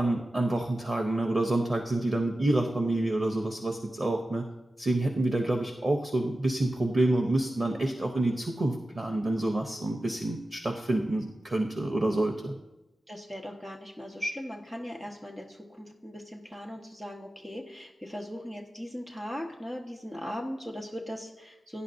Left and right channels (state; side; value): normal; both; correlation 0.94